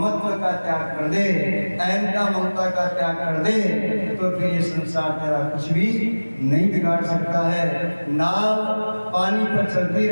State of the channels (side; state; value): both; inverted; correlation -1.00